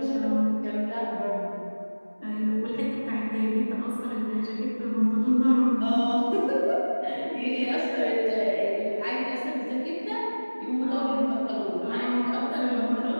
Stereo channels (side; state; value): both; inverted; correlation -1.00